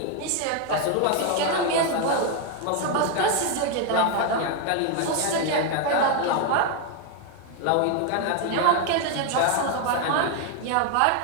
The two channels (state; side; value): different; both; correlation 0.01